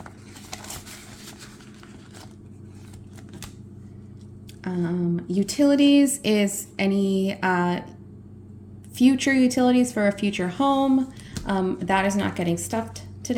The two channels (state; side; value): identical; both; correlation 1.00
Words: Utilities is any future utilities for a future home. That is not getting stuffed